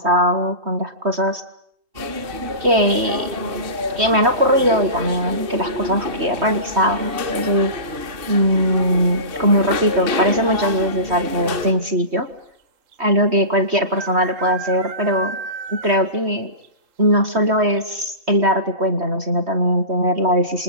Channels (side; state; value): left; late; 3.2 ms